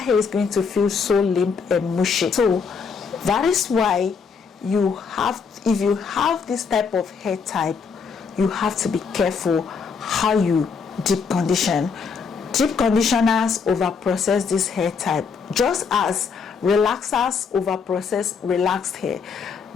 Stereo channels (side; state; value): right; quieter; 5.6 dB